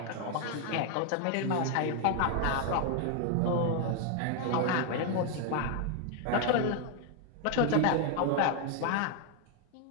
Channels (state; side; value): different; both; correlation 0.00